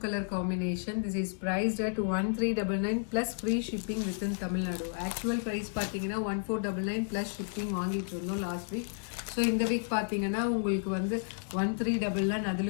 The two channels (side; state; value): right; silent; digital silence